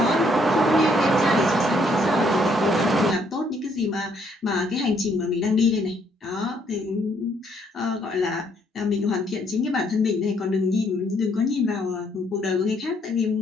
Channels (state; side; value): normal; both; correlation 0.69